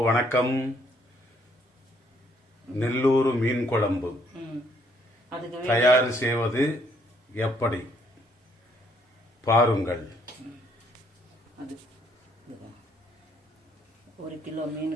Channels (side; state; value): both; normal; correlation 0.68